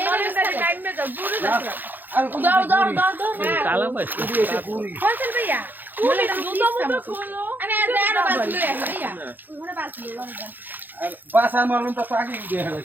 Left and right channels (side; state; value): left; late; 0.088 ms